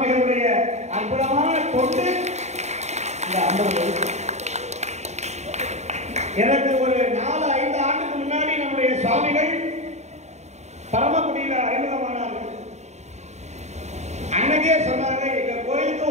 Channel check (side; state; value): left; late; 0.33 ms